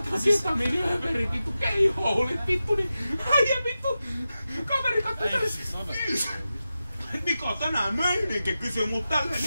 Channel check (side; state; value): both; inverted; correlation -0.92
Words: ketamiiniöverin vittu keihoulit vittu, niin äijä vittu. Kaveri kattoi tällaisen. Niko tänään meininki kysyy mut tälleen,